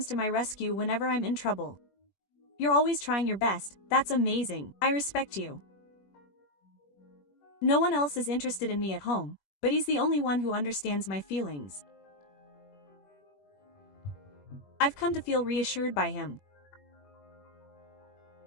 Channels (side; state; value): right; late; 21 ms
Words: to my rescue whenever I'm in trouble. You're always trying your best, that's amazing, I respect you. No one else is interested in me at home, but he's the only one who understands my feelings. I've come to feel reassured by him.